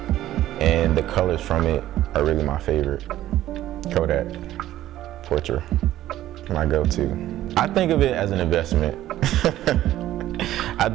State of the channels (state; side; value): quieter; left; 13.8 dB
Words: and the colors from it are really my favorite. Kodak, Portrait, my go-to. I think of it as an investment. I